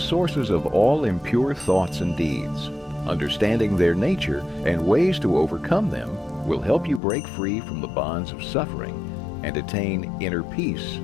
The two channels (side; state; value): right; drops out; at 7.0 s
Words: of all impure thoughts and deeds. Understanding their nature and ways to overcome them will help you break free from the bonds of suffering and attain inner peace